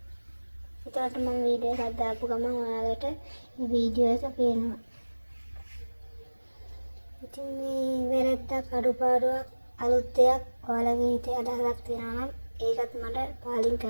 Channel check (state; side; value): inverted; both; correlation -1.00